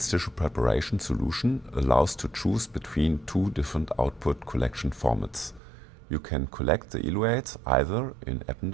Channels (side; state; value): left; drops out; at 5.6 s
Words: tissue preparation solution allows to choose between 2 different output collection formats. You can collect the eluates either in